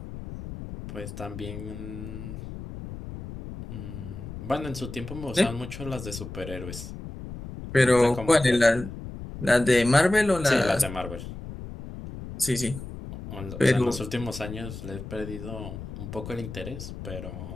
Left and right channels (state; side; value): noise; left; rumble, 10 dB below the sound